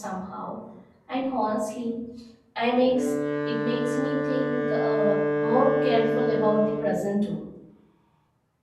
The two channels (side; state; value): both; identical; correlation 1.00